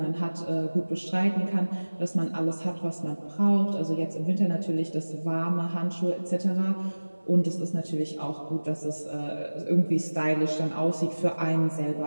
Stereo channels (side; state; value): both; inverted; correlation -1.00